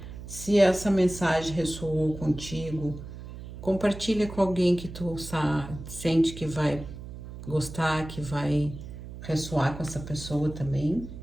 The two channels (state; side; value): noise; right; hum, 12 dB below the sound